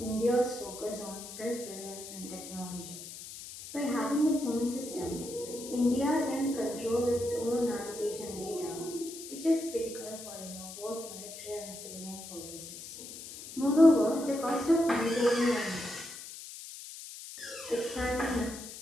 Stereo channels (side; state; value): left; noise; hiss, 12 dB below the sound